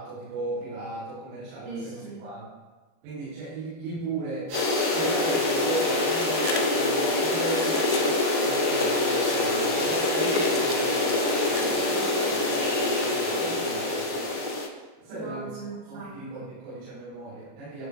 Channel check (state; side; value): late; left; 39 ms